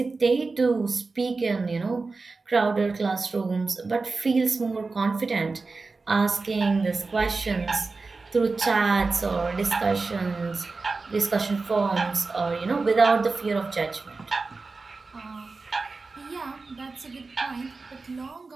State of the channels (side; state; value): left; quieter; 3.9 dB